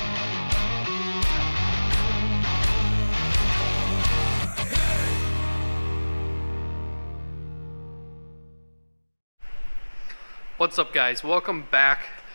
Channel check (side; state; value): both; inverted; correlation -1.00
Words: What's up, guys? Welcome back